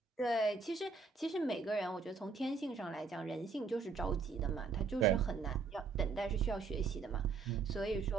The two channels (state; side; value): quieter; left; 4.8 dB